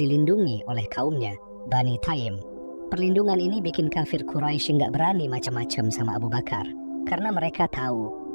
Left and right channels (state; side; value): inverted; both; correlation -1.00